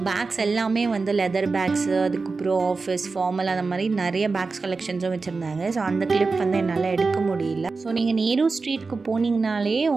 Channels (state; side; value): quieter; left; 4.2 dB